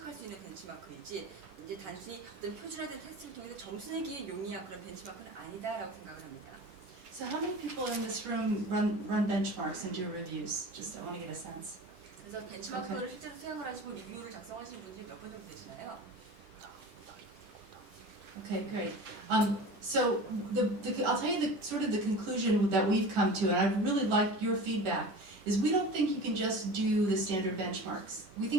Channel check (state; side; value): late; left; 11 ms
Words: 수 있는 벤치마크이지 이제 단순히 어떤 표준화된 테스트를 통해서 점수 내기에 용이한 그런 벤치마크는 아니다라고 생각을 합니다. So how many people in this room run benchmarks and do reviews? Just I want to get a sense. 그래서 벤치마크를 실제로 수행을 하시고 리뷰를 작성하시는 분들이 몇 분 정도 되시나요? Okay, great. So I'll tell you the sort of the conclusion that we've come to, and I really like your feedback, is we don't think you can just do the standard benchmarks. We